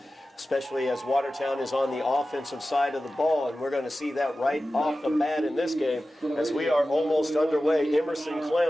especially as Watertown is on the offensive side of the ball, and we're going to see that right off the bat in this game as we are almost underway. Emerson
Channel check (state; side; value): normal; both; correlation 0.94